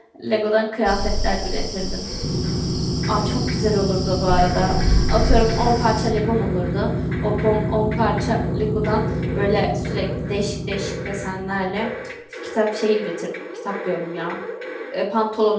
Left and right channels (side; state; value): both; identical; correlation 1.00